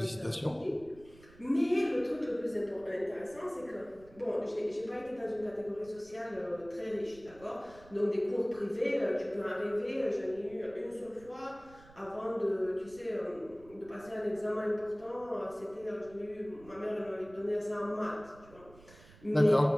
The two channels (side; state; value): right; noise; rumble, 23 dB below the sound